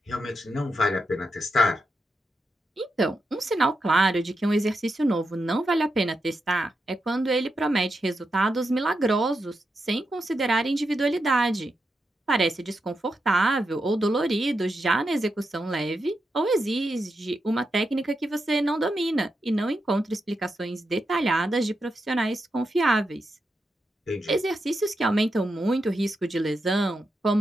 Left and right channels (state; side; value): normal; both; correlation 0.86